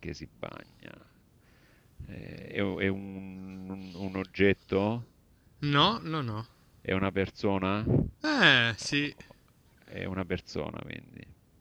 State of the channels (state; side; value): identical; both; correlation 1.00